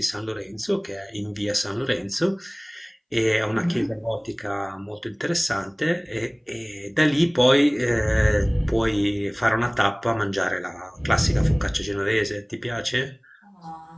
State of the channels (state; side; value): identical; both; correlation 1.00